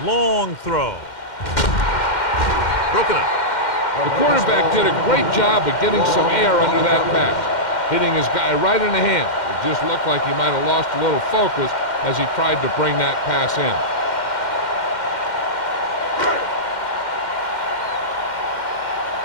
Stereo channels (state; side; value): late; right; 2.1 ms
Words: Long throw. Broken up. The quarterback did a great job of getting some air under that pass, hitting his guy right in the hand. It just looked like he might have lost a little focus as he tried to bring that pass in.